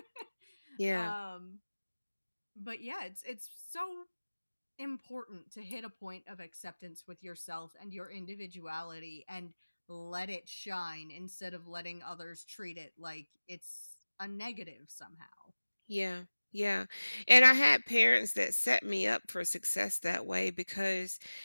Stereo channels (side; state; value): both; inverted; correlation -1.00